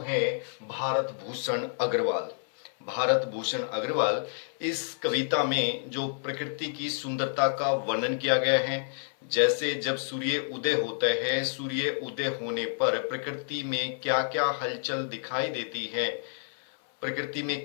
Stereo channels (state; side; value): silent; right; 58 dB below the other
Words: भारत भूषण अग्रवाल। भारत भूषण अग्रवाल। इस कविता में जो प्रकृति की सुंदरता का वर्णन किया गया है, जैसे जब सूर्य उदय होता है, सूर्य उदय होने पर प्रकृति में क्या क्या हलचल दिखाई देती है, प्रकृति